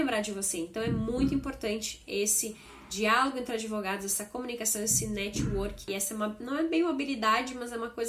de você. Então é muito importante esse diálogo entre advogados, essa comunicação, esse network. E essa não é bem uma habilidade, mas é uma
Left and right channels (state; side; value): identical; both; correlation 1.00